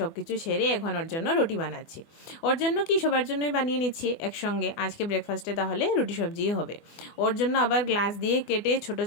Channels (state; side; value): late; right; 24 ms